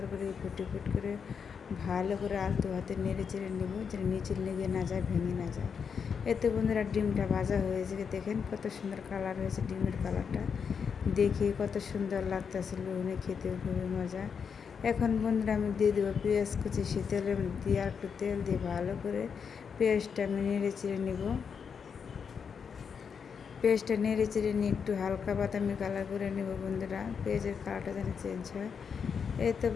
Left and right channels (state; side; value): quieter; right; 6.5 dB